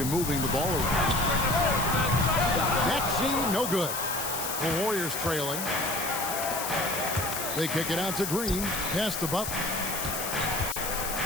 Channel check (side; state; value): left; noise; hiss, 4 dB below the sound